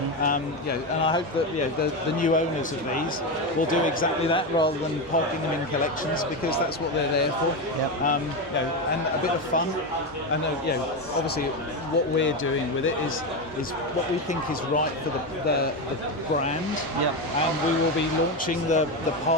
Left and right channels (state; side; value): normal; both; correlation 0.14